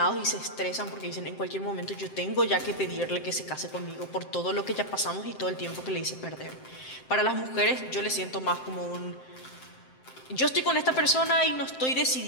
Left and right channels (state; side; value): late; right; 7.7 ms